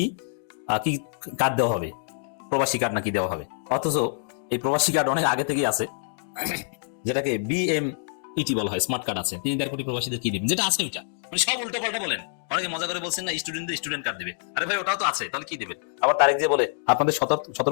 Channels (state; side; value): silent; right; digital silence